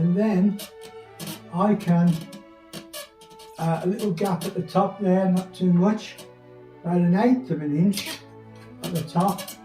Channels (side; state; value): both; identical; correlation 1.00